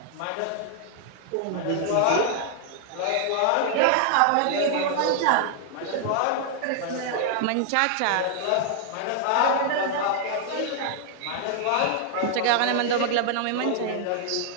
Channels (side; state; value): both; different; correlation 0.00